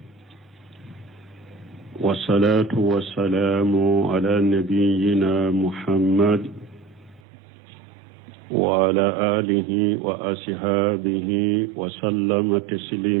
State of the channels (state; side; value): drops out; left; at 7.2 s